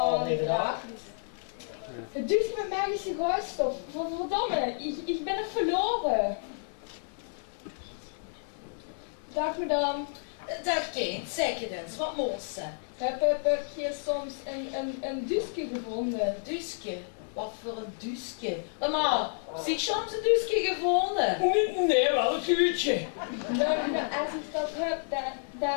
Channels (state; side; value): silent; right; digital silence